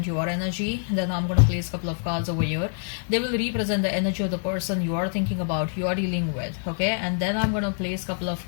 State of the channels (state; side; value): silent; right; digital silence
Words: your energy. Then I'm going to place a couple of cards over here. They will represent the energy of the person you are thinking about, you are dealing with. Okay, and then I'm going to place a couple of